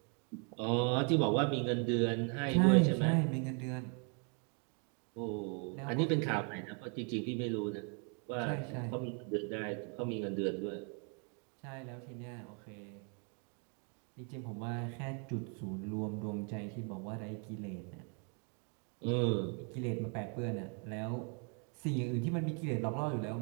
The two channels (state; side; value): quieter; left; 38.3 dB